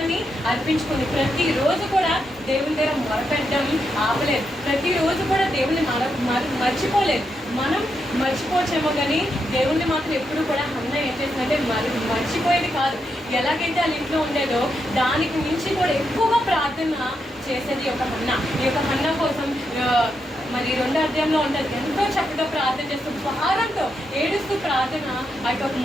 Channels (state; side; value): normal; both; correlation 0.83